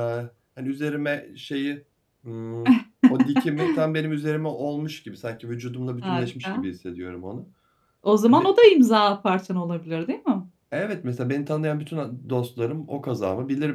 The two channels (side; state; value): both; identical; correlation 1.00